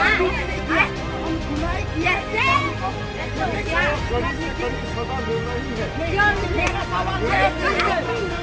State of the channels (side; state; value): both; identical; correlation 1.00